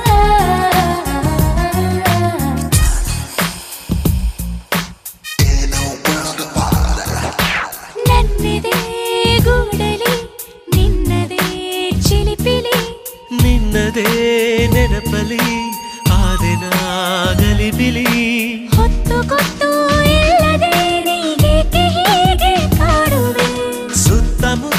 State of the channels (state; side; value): identical; both; correlation 1.00